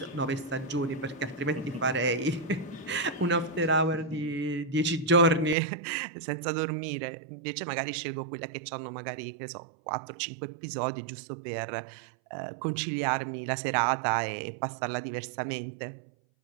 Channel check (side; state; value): left; drops out; at 5.6 s